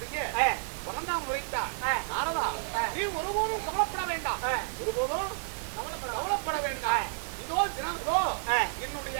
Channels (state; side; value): silent; left; digital silence